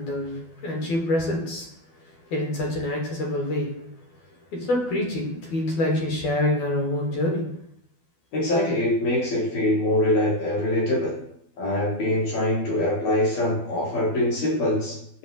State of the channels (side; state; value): right; late; 12 ms